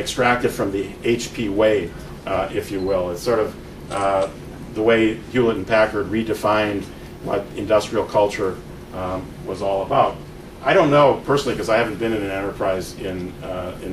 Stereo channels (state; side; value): identical; both; correlation 1.00